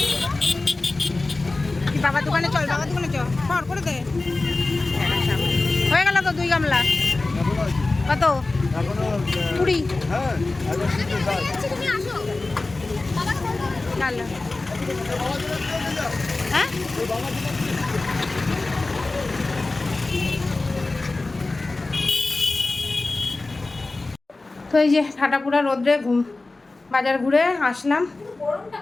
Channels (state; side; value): quieter; right; 3.3 dB